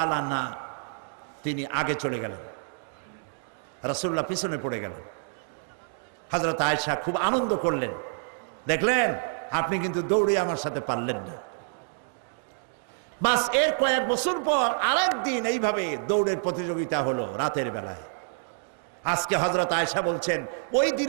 আনহা তিনি আগে চলে গেলেন, রাসূলুল্লাহ পিছনে পড়ে গেলেন। হযরত আয়েশা খুব আনন্দ করলেন, দেখলেন আপনি কিন্তু দৌড়ে আমার সাথে পারলেন না। বাস এর কয়েক বছর পর আরেকদিন এইভাবে দৌড়ের প্রতিযোগিতা হলো রাতের বেলায়। আজকে হযরত আয়েশা বলছেন, ওই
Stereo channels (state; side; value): silent; left; digital silence